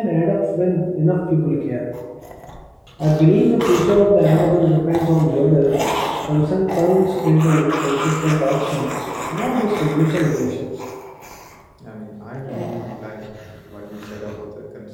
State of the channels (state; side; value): identical; both; correlation 1.00